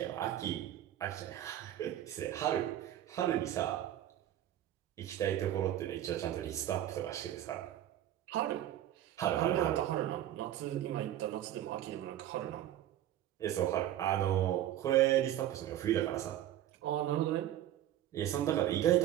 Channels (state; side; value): quieter; left; 12.4 dB